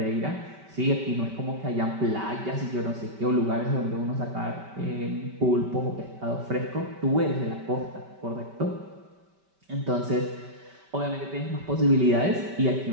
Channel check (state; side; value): late; left; 5.1 ms